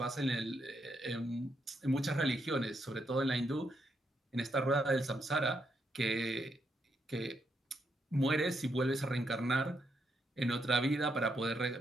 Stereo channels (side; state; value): both; normal; correlation 0.79